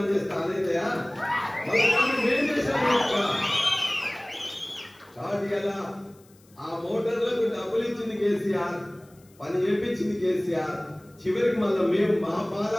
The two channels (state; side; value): noise; left; hiss, 30 dB below the sound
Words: చేస్తే ఆనవుతాయా? కాబట్టి కదా ఆ మోటార్లకు డబ్బులు ఇచ్చింది కేసీఆర్, పని చేపించింది కేసీఆర్. చివరికి మళ్ళీ మేము మా